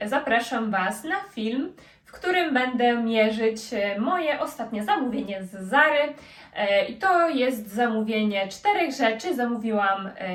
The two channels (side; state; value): both; identical; correlation 1.00